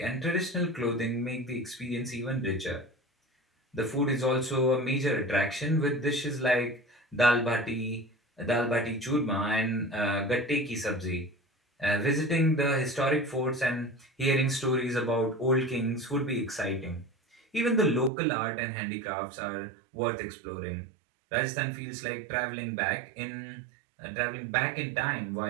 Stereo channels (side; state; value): left; drops out; at 18.1 s